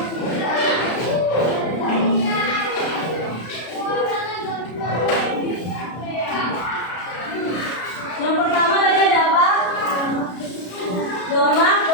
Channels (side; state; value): right; late; 33 ms